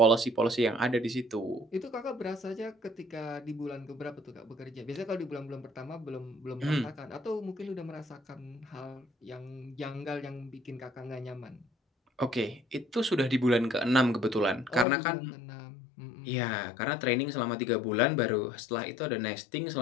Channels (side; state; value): right; drops out; at 14.9 s